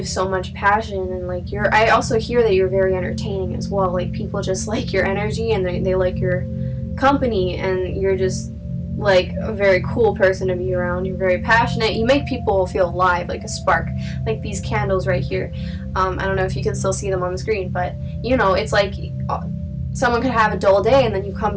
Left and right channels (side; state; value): both; identical; correlation 1.00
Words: so much passion. And like, I also hear that you're very entertaining as well. Like, people just like your energy, and they like your company, and you're just like a very cool person to be around. You're very passionate. You make people feel alive, like a spark, like these candles right here. I don't know if you can still see them on the screen, but you know, it's like someone could have a dull day and then you come